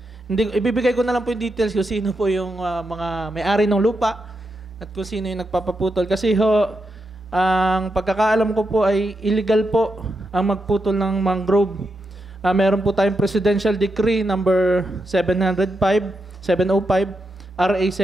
hindi, ibibigay ko na lang po yung details kung sino po yung mga may-ari ng lupa at kung sino yung nagpapaputol kasi ho ang pagkakaalam ko po ay illegal po ang magputol ng mangrove. Meron po tayong Presidential Decree number 705, RA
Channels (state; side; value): normal; both; correlation 0.85